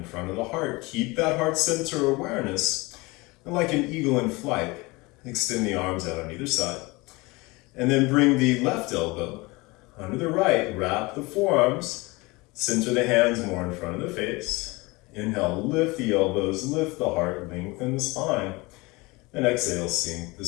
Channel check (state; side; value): quieter; right; 23.9 dB